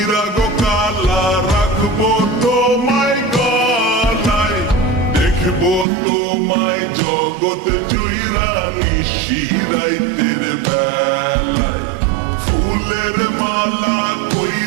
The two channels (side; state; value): left; drops out; at 5.9 s